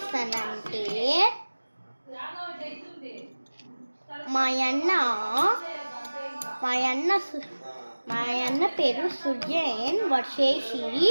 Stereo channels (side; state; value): both; inverted; correlation -1.00